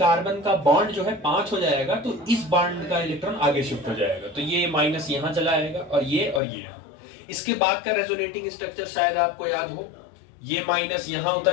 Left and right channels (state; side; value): drops out; right; at 6.4 s